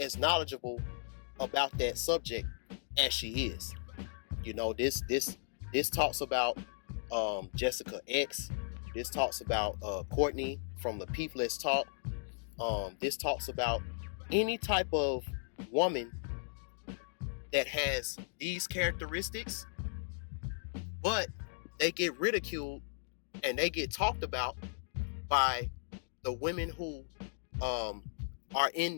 knowledgeable about that subject as she is. You know, this talks about Jessica X. This talks about Courtney from the Lapeef Let's Talk. This talks about any type of woman that has these characteristics, but they get ridiculed and they get talked about by the women who are in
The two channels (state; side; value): silent; right; digital silence